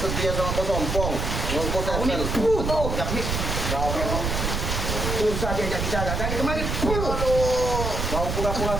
sama bos Ompong. Bos Kau ini Tyson. tuh, Jabri. Kau memang susah diajak bicara. Dari kemarin, Aduh. kau pura-pura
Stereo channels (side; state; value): right; noise; rumble, 2 dB below the sound